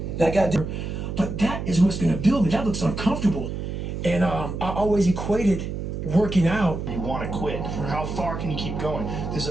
I got there. But that is what's gonna build me. That looks uncomfortable. And I always equated working out. You want to quit. How far can you keep going? There's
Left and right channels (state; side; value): noise; right; hum, 5 dB below the sound